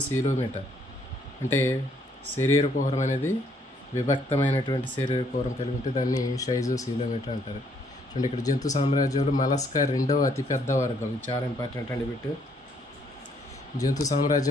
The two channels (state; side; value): normal; both; correlation 0.68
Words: అంటే శరీర కుహరం అనేది విభక్తమైనటువంటి శరీర కుహరం కలిగి ఉంటే దాన్ని షైజోసీలోమేటా అంటారు. చూడండి, ఇక్కడ జంతు సామ్రాజ్యంలో మలస్కా రెండవ అతిపెద్ద వర్గం. ఇది చాలా ఇంపార్టెంట్ అండి బిట్. జంతు